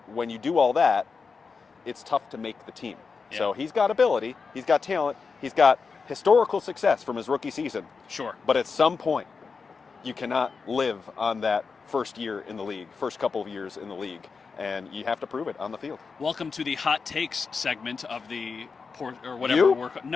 when you do all that, it's tough to make the team. Yeah. So he's got ability, he's got talent, he's got historical success from his rookie season. Sure. But at some point, you cannot live on that first year in the league, first couple of years in the league, and you have to prove it on the field. Welcome to the hot takes segment of the or whatever. You?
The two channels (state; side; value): quieter; right; 5.0 dB